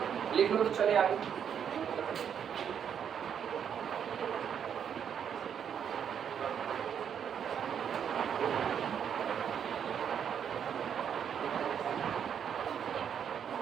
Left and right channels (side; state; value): left; quieter; 8.2 dB